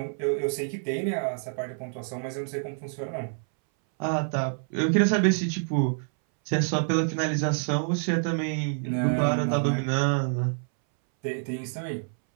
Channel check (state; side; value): silent; left; 60 dB below the other